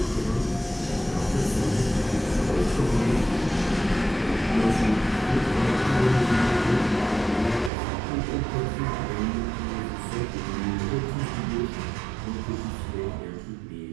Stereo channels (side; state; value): left; drops out; at 7.7 s